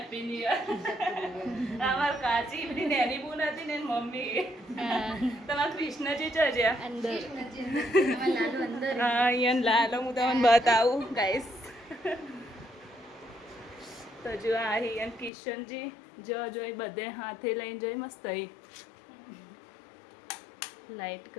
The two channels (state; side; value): drops out; right; at 15.3 s